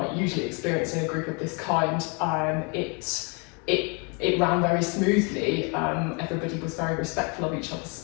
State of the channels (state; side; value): quieter; right; 33.4 dB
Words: usually experience in a group of this kind, it ran very smoothly. Everybody was very respectful of each other's